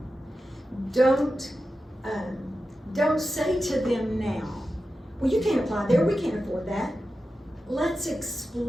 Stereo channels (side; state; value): both; normal; correlation 0.92